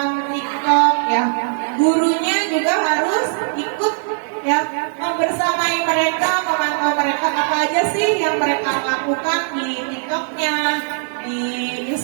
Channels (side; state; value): left; silent; digital silence